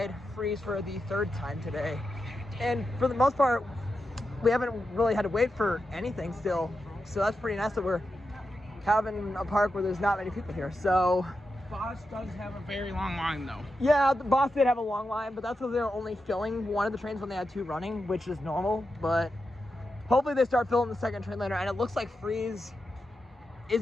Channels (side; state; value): both; normal; correlation 0.88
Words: Freeze for the 3rd time today. And for the most part, we haven't really had to wait for anything still. So that's pretty nice that we're having a park where there's not many people here. So Bosch does have a very long line though. yeah, the Boss did have a long line, but that's because they were only filling one of the trains when they had 2 running, which is normal. But hopefully they start filling the 2nd train later, and it looks like Freeze